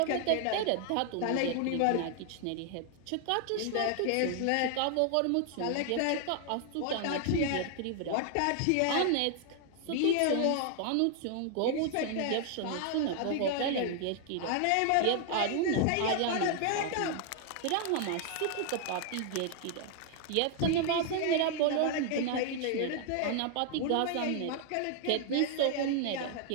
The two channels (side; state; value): both; different; correlation 0.00